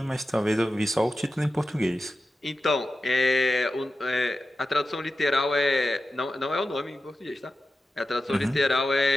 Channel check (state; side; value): normal; both; correlation 0.92